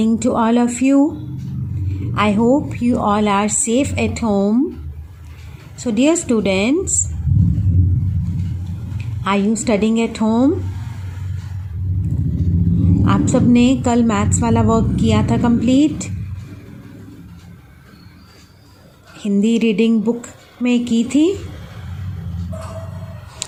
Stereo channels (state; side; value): identical; both; correlation 1.00